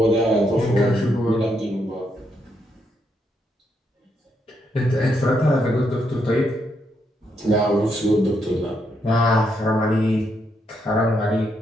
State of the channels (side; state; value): both; normal; correlation 0.78